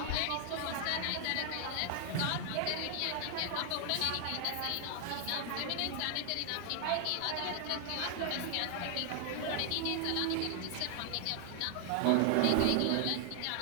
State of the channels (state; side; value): different; both; correlation 0.00